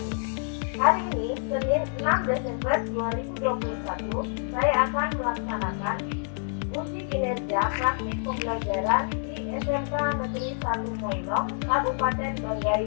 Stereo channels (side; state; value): right; silent; 60 dB below the other